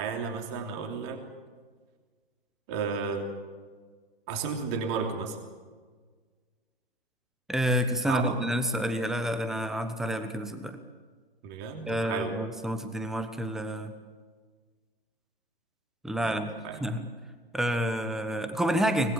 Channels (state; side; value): normal; both; correlation 0.53